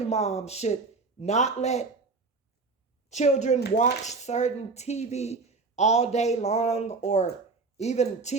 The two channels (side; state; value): left; quieter; 4.0 dB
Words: mom should not let children watch certain TV all day long, or even